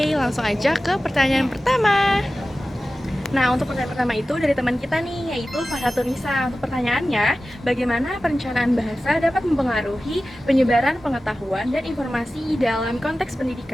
langsung aja ke pertanyaan pertama. Nah, untuk pertanyaan pertama itu dari teman kita nih, yaitu Farhatunisa. Untuk pertanyaannya, bagaimana perencanaan bahasa dapat mempengaruhi penyebaran pengetahuan dan informasi dalam konteks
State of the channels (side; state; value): both; normal; correlation 0.95